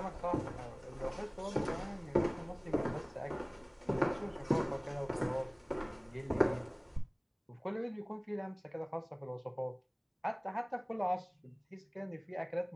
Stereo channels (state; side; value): identical; both; correlation 1.00